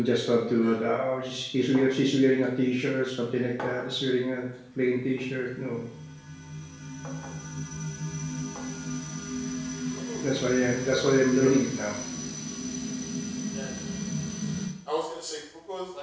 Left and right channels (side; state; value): both; identical; correlation 1.00